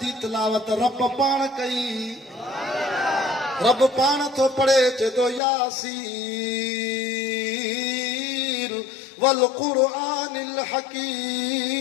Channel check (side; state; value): right; drops out; at 5.4 s